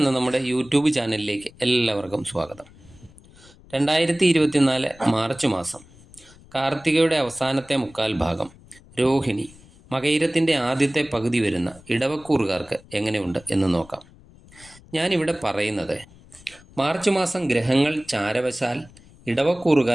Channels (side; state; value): left; noise; rumble, 24 dB below the sound